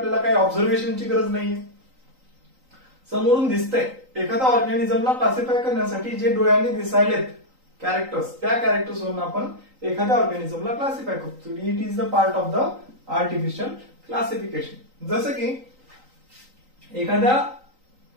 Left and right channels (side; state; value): left; late; 3.9 ms